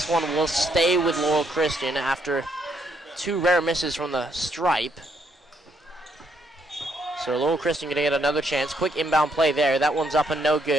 one will stay with Laurel Christian after two rare misses from the stripe. So Laurel Christian going to get another chance. Quick inbound play there. That one's up and no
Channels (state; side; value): normal; both; correlation 0.73